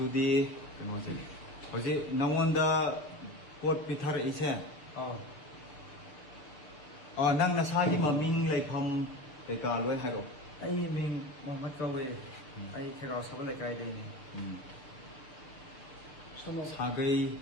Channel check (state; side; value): late; right; 6.9 ms